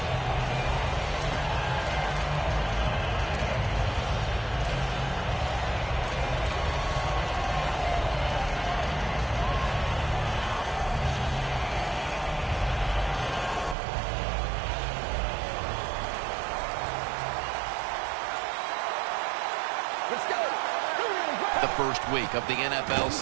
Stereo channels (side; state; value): left; drops out; at 13.8 s